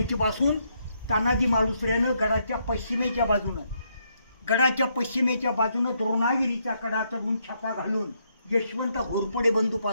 तानाजी मालुसऱ्यानं गडाच्या पश्चिमेच्या बाजूनं द्रोणागिरीचा कडा चढून छापा घालून यशवंत घोरपडे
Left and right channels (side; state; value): both; inverted; correlation -0.76